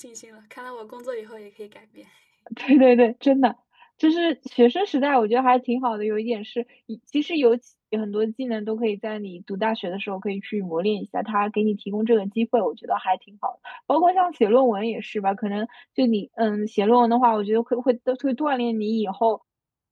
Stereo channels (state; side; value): identical; both; correlation 1.00